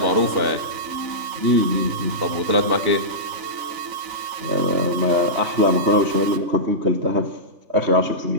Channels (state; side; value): late; left; 3.8 ms